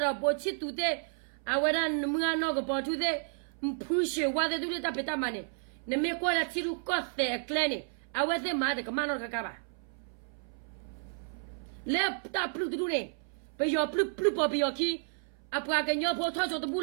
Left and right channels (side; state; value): left; silent; 57 dB below the other